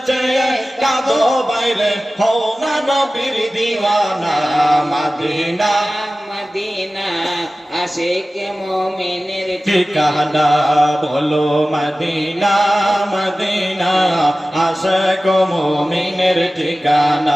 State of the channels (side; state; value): both; normal; correlation 0.96